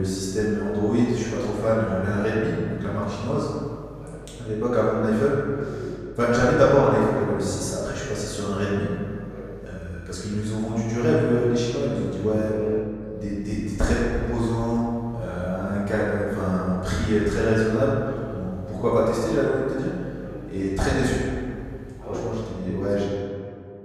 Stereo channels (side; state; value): both; identical; correlation 1.00